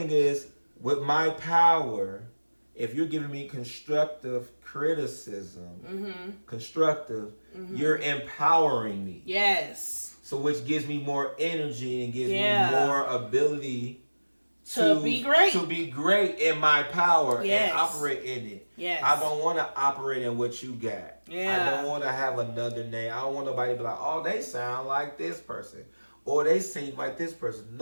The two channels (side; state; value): both; inverted; correlation -1.00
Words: is, with my power, if you're giving me constructive criticism, you're empowering me. Yes. So which gives me more energy and gives me more ability to be great. To be great in my power Yes. and operate in it. Yes. I don't want to operate in what you got. Yeah. I don't want to have another name. I don't want nobody to be like, oh, they sound like this person. Or they sing like this person.